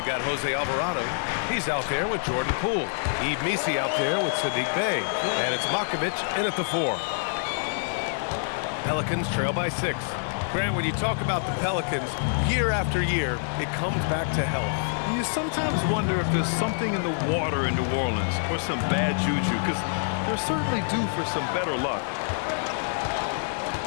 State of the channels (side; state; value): right; silent; digital silence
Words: got Jose Alvarado. He's out there with Jordan Poole. Yves Missi out there with Sadiq Bey. And it's Makovic in at the 4. Pelicans trail by 6. Grant, when you talk about the Pelicans, year after year, it comes back to health. And you sometimes wonder if there's something in the water in New Orleans or some bad juju, because they're certainly due for some better luck.